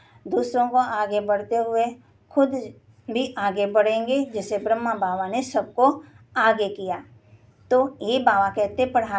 दूसरों को आगे बढ़ते हुए खुद भी आगे बढ़ेंगे, जैसे ब्रह्मा बाबा ने सबको आगे किया। तो ये बाबा कहते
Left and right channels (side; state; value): both; identical; correlation 1.00